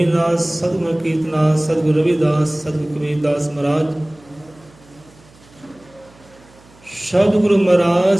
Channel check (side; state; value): right; noise; hum, 27 dB below the sound